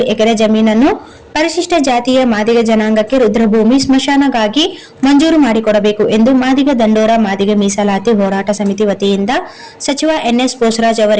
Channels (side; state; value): both; identical; correlation 1.00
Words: ಎಕರೆ ಜಮೀನನ್ನು ಪರಿಶಿಷ್ಟ ಜಾತಿಯ ಮಾದಿಗ ಜನಾಂಗಕ್ಕೆ ರುದ್ರಭೂಮಿ ಸ್ಮಶಾನಗಾಗಿ ಮಂಜೂರು ಮಾಡಿಕೊಡಬೇಕು ಎಂದು ಮಾದಿಗ ದಂಡೋರ ಮಾದಿಗ ಮೀಸಲಾತಿ ಹೋರಾಟ ಸಮಿತಿ ವತಿಯಿಂದ ಸಚಿವ ಎನ್ಎಸ್ ಬೋಸರಾಜ್